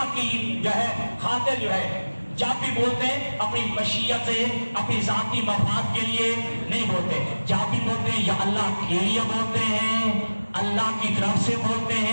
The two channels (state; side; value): inverted; both; correlation -1.00